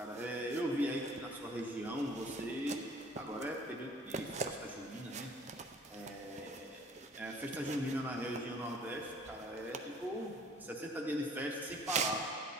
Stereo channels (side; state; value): both; normal; correlation 0.53